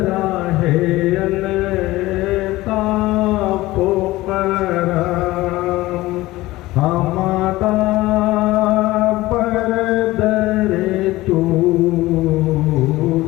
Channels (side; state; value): right; quieter; 18.3 dB